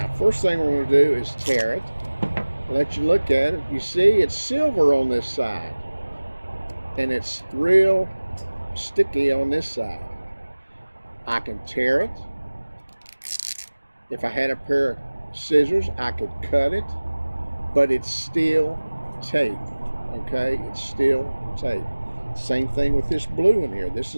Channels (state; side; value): inverted; both; correlation -1.00